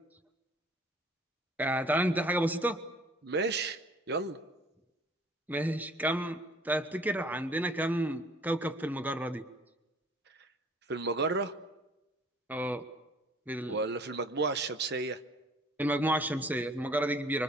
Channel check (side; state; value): both; normal; correlation 0.54